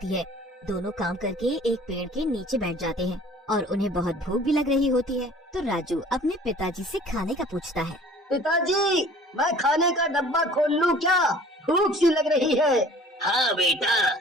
है। दोनों काम करके एक पेड़ के नीचे बैठ जाते हैं और उन्हें बहुत भूख भी लग रही होती है। तो राजू अपने पिताजी से खाने का पूछता है। पिताजी, मैं खाने का डब्बा खोल लूं क्या? भूख सी लग रही है। हाँ बेटा,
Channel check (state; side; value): normal; both; correlation 0.49